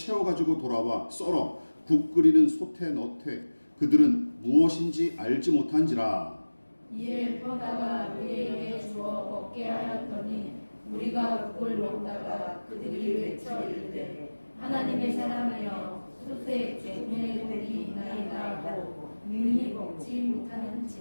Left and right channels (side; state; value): both; inverted; correlation -1.00